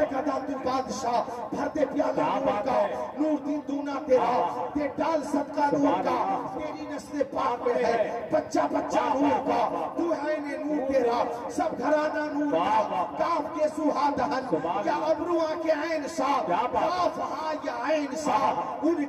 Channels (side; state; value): both; identical; correlation 1.00